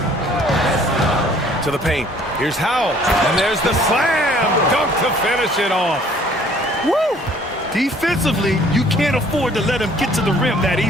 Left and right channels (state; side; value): normal; both; correlation 0.57